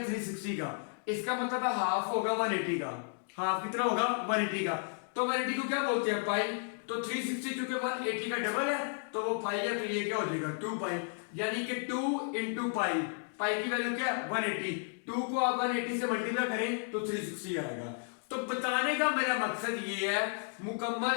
का। इसका मतलब है हाफ होगा 180 का। हाफ कितना होगा? 180 का। तो 180 को क्या बोलते हैं? पाई। तो 360 चूंकि 180 का डबल है तो वो पाई है, तो ये क्या हो जाएगा? 2 पाई, यानी कि 2 इंटू पाई। पाई की वैल्यू क्या है? 180। 2 को आप 180 से मल्टीप्लाई करें तो 360 आएगा। तो बताने का मेरा मकसद ये है,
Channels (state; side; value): silent; right; 56 dB below the other